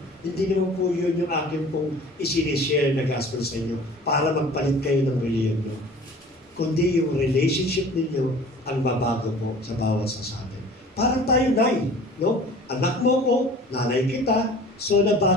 Hindi naman po yun yung akin pong isinishare na gospel sa inyo para magpalit kayo ng religion nyo. Kundi yung relationship ninyo ang babago po sa bawat sa atin. Parang tayo, Nay, no? Anak mo ko, nanay kita, so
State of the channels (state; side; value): normal; both; correlation 0.45